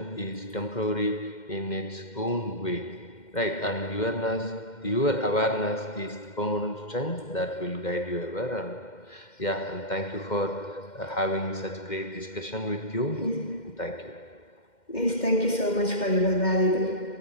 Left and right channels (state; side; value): late; right; 2.1 ms